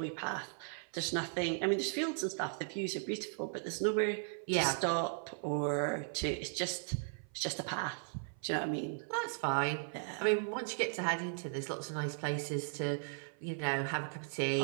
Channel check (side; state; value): left; silent; 53 dB below the other